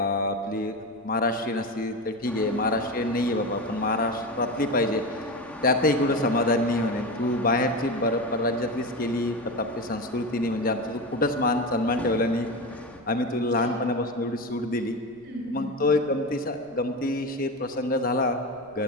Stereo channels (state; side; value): noise; right; rumble, 29 dB below the sound